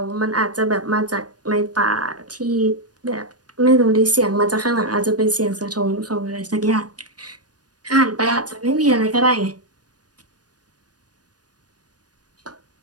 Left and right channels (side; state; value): left; late; 0.69 ms